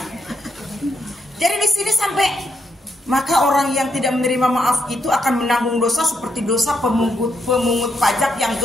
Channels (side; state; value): both; normal; correlation 0.79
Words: Jadi di sini sampai maka orang yang tidak menerima maaf itu akan menanggung dosa seperti dosa pemungut pajak yang